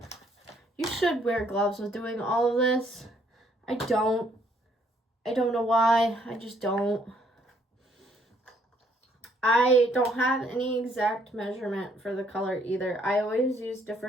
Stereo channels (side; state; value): both; normal; correlation 0.67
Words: You should wear gloves with doing all of this. I don't know why, I just don't. I don't have any exact measurement for the color either. I always use